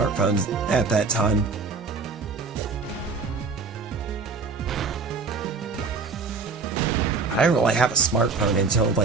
at that time. I didn't really have a smartphone until,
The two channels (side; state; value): left; quieter; 4.4 dB